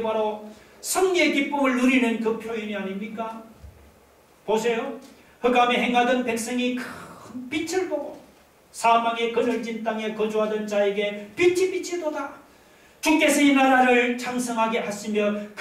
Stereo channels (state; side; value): identical; both; correlation 1.00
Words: 바로 승리의 기쁨을 누리는 그 표현이 아닙니까? 보세요. 흑암에 행하던 백성이 큰 빛을 보고 사망의 그늘진 땅에 거주하던 자에게 빛이 도다. 주께서 이 나라를 창성하게 하시며